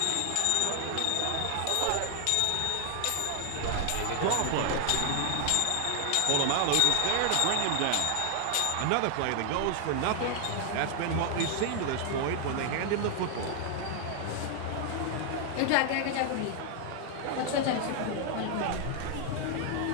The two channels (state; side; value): different; both; correlation 0.00